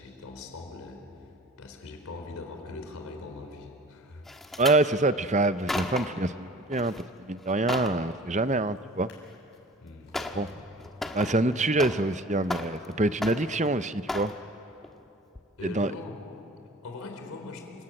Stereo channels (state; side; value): normal; both; correlation 0.44